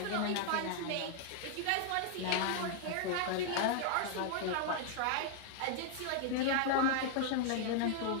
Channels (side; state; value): both; different; correlation 0.00